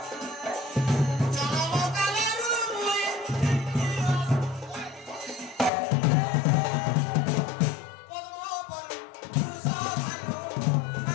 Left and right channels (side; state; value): right; drops out; at 5.7 s